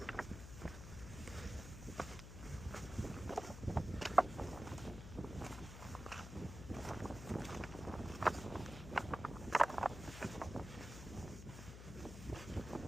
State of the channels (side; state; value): left; noise; hum, 11 dB below the sound